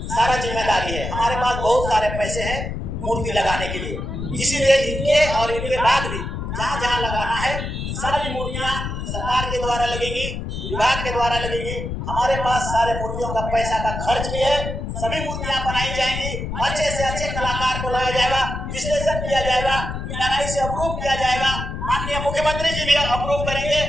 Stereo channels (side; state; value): left; noise; rumble, 5 dB below the sound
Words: सारा जिम्मेदारी है। हमारे पास बहुत सारे पैसे हैं मूर्ति लगाने के लिए, इसीलिए इनके और इनके बाद भी जहाँ जहाँ लगाना है सारी मूर्तियां सरकार के द्वारा लगेंगी, विभाग के द्वारा लगेगी। हमारे पास सारे मूर्तियों का पैसा का खर्च भी है, सभी मूर्तियां बनाई जाएंगी, अच्छे से अच्छे कलाकार को लाया जाएगा, विश्लेषण किया जाएगा, PRI से अप्रूव किया जाएगा, माननीय मुख्यमंत्री जी भी अप्रूव करेंगे